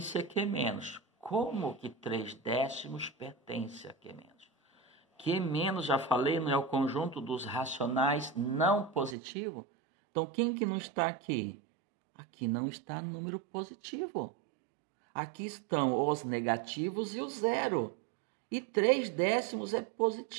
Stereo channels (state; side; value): drops out; left; at 9.2 s